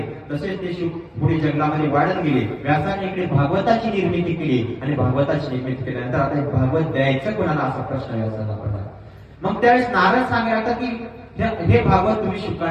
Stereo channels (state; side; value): identical; both; correlation 1.00